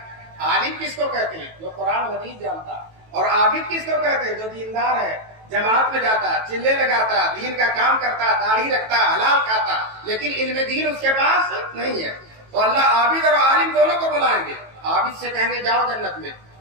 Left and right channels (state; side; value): late; left; 18 ms